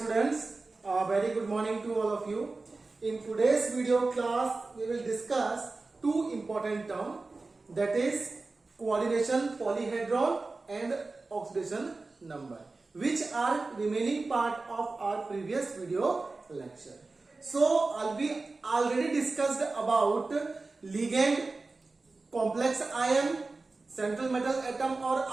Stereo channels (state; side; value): quieter; left; 3.6 dB